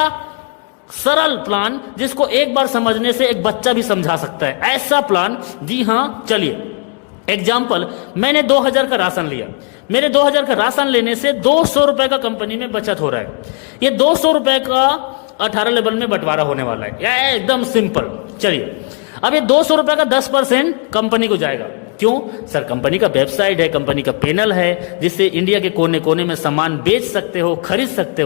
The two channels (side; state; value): right; quieter; 38.7 dB